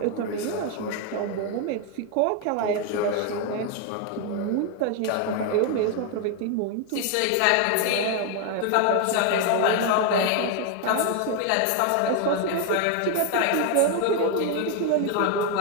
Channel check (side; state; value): both; different; correlation 0.01